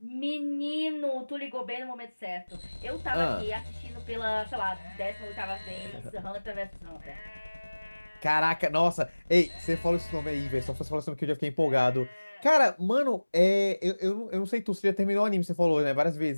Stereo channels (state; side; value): inverted; both; correlation -1.00